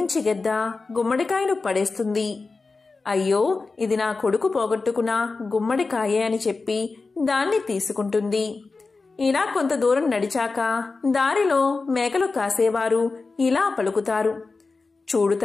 గెద్ద గుమ్మడికాయను పడేస్తుంది. అయ్యో, ఇది నా కొడుకు పోగొట్టుకున్న గుమ్మడికాయే అని చెప్పి దాన్ని తీసుకుంటుంది. ఇలా కొంత దూరం నడిచాక దారిలో మేకలు కాసేవారు ఇలా పలుకుతారు, చూడు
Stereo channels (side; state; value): right; quieter; 4.0 dB